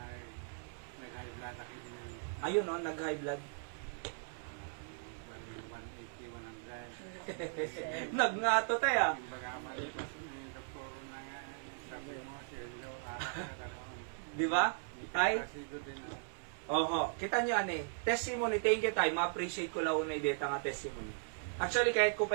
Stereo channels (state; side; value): silent; left; digital silence